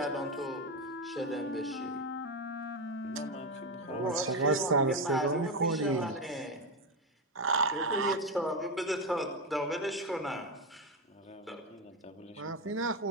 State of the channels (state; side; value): normal; both; correlation 0.12